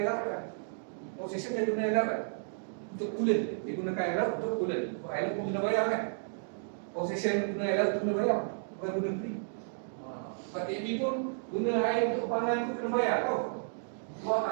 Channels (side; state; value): left; silent; digital silence